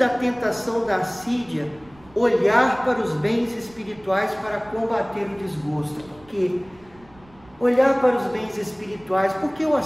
tentação da assídia, olhar para os bens espirituais para combater o desgosto. Por quê? Olhar para os bens espirituais, porque o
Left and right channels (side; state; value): right; noise; rumble, 27 dB below the sound